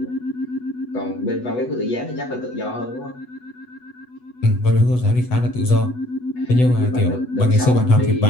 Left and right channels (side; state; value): right; late; 8.1 ms